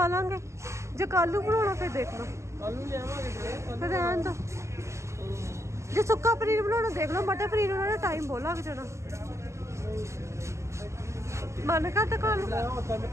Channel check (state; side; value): late; left; 0.14 ms